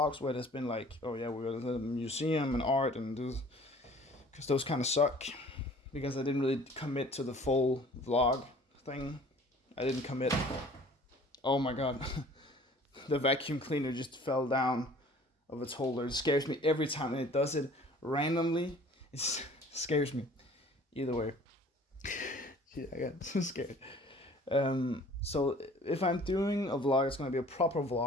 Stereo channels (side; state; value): both; normal; correlation 0.51